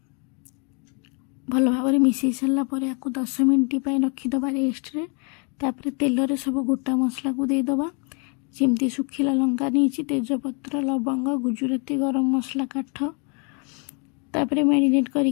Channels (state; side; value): quieter; right; 36.2 dB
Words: भल भाव मिसई सारा पर या 10 मिनट रखीदबा रेस्ट रे तापर तेल रे सब गोटा मसला को देदेबा जमती सुखिला लंका नहीं तेजपत्र लवंग गुजुराती गरम मसला काठ तापर मैरिनेट